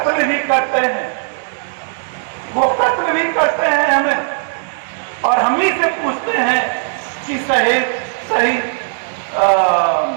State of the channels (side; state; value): left; silent; digital silence